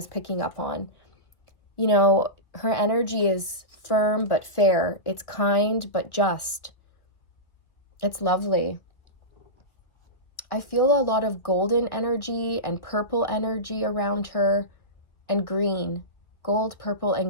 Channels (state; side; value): late; right; 1.7 ms